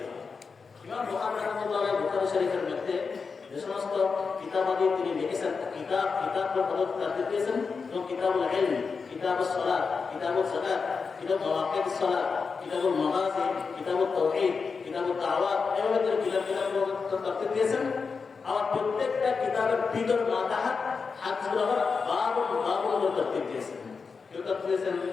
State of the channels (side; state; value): right; quieter; 5.1 dB